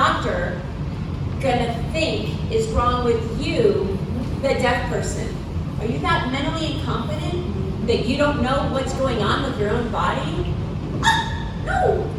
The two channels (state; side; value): identical; both; correlation 1.00